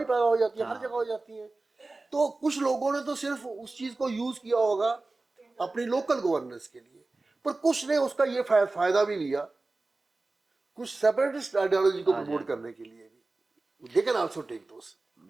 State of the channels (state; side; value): quieter; left; 3.3 dB